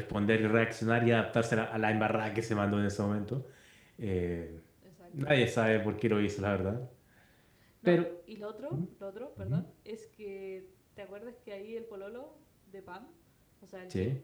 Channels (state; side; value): identical; both; correlation 1.00